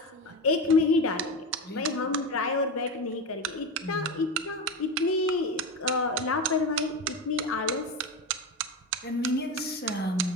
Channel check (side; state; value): both; normal; correlation 0.20